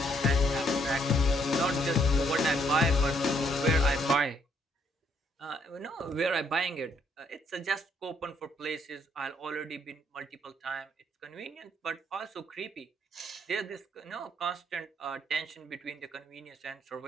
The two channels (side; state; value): both; normal; correlation 0.70